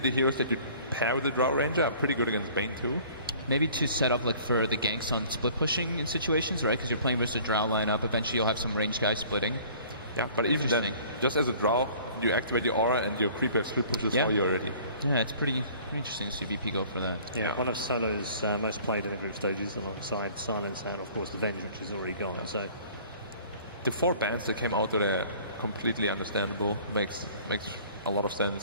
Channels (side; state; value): both; inverted; correlation -0.51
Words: heroes that you pair with the Drow Ranger are pretty good against Bane too. Maybe to set up like for the ganks on split pushing in situations, right? Because you're playing versus a Drow lineup. Eventually you'll have some ranged guys splitting. Yeah, but even then, just as a Drow, you activate your aura and your creeper split pushes for you already. Yeah, it's pretty interesting to see VP go for that. Yeah, one of Solo's most played in the group stages alongside Silence and of course the Venge, which is already gone. So the 4 bans that came out that are completely understandable, makes a lot of